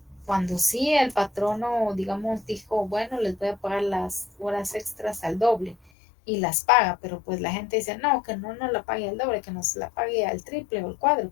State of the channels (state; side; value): drops out; right; at 5.8 s